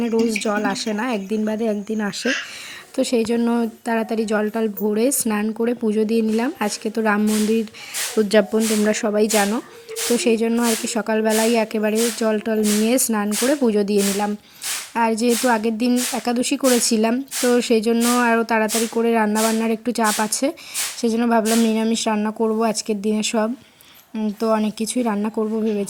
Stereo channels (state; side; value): identical; both; correlation 1.00